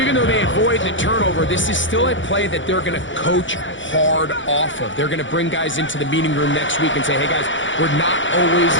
though they avoid the turnover, this is still a play that they're going to coach hard off of. They're going to bring guys into the meeting room next week and say, hey, guys, we're not always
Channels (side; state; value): right; late; 0.55 ms